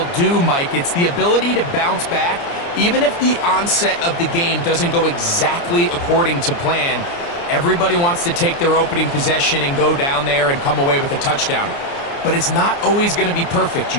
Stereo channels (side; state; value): right; late; 29 ms